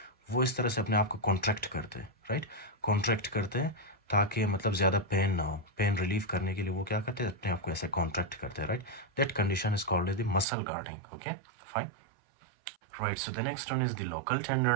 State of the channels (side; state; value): left; drops out; at 10.5 s